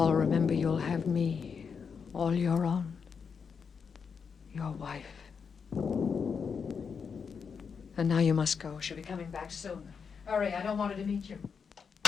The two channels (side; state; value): right; quieter; 6.1 dB